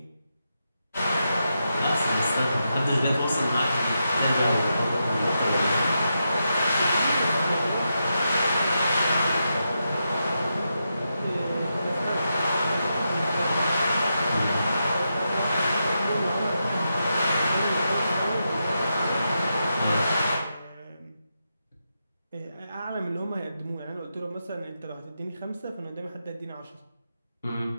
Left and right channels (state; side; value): inverted; both; correlation -0.86